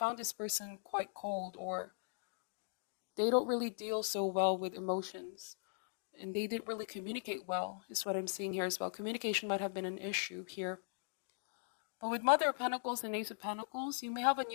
this person quite cold, or they don't really deal so well with emotions. And they didn't really communicate well, is what I'm seeing here as well. Communication might have been an issue here. But with Mother of Pentacles and Ace of Pentacles, you may have a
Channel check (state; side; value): silent; right; digital silence